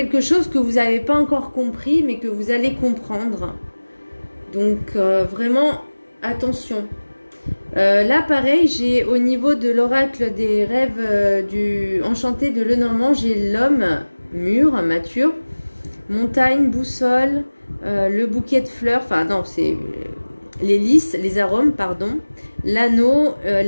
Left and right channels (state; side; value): inverted; both; correlation -1.00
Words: chose que vous n'avez pas encore compris, mais que vous allez comprendre. Donc vraiment, attention. Là, pareil, j'ai au niveau de l'oracle des rêves du enchanté de Lenormand, j'ai l'homme mûr, mature, montagne, boussole, le bouquet de fleurs, enfin non, c'est les lys, les arômes, pardon, l'anneau,